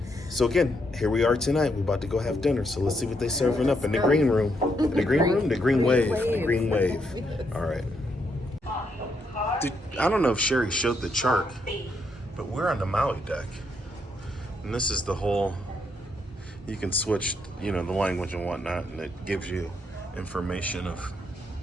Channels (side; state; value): both; normal; correlation 0.77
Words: so again, here we are tonight. We're about to go have dinner. So let's see what they're serving up in the green room. In the green room? The green wave. The green wave. All right. I don't know if Sherry showed the chart, but we're on the Maui deck. And this is the whole, you can switch, the language and whatnot, and it gives you information of